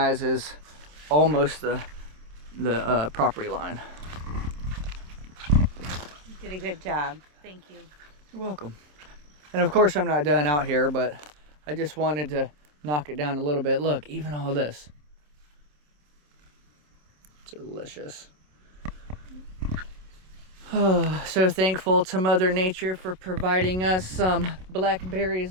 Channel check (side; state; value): left; late; 27 ms